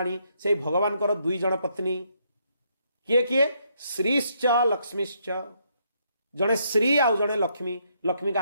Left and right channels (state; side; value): inverted; both; correlation -0.73